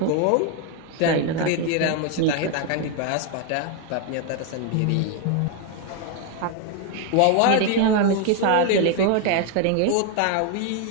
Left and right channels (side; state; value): both; different; correlation 0.01